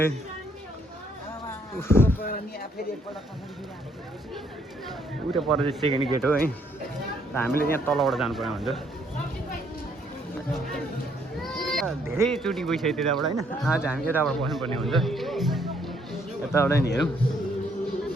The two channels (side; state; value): both; normal; correlation 0.69